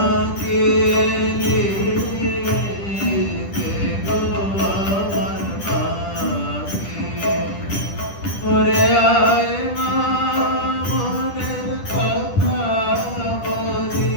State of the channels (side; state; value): right; late; 10 ms